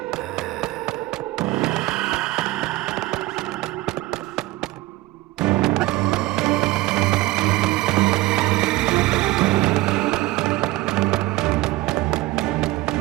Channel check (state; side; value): quieter; left; 18.4 dB